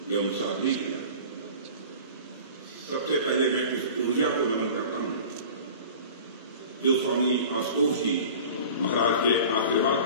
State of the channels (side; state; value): both; inverted; correlation -0.40